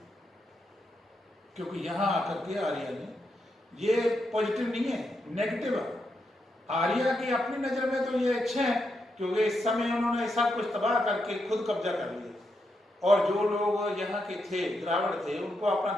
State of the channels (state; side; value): normal; both; correlation 0.83